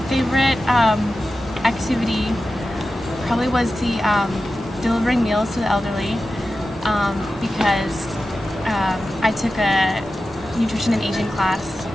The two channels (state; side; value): normal; both; correlation 0.93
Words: favorite activity probably was the delivering meals to the elderly, because I took a nutrition and aging class